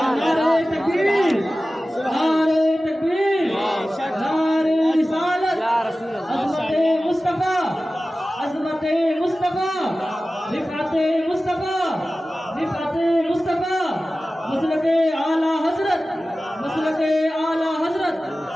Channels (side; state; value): both; normal; correlation 0.95